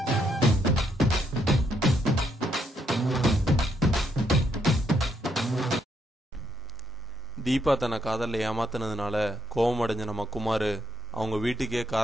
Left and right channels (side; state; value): both; normal; correlation 0.76